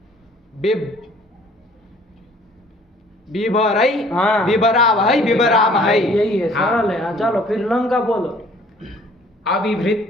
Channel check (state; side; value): normal; both; correlation 0.55